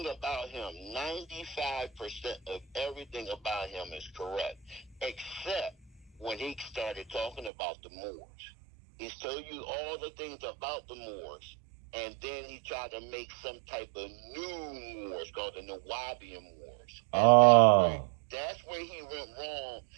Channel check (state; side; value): drops out; left; at 7.5 s